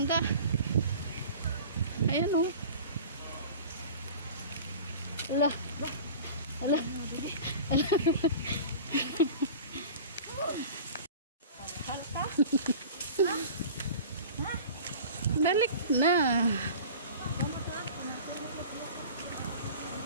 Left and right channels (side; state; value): both; inverted; correlation -0.39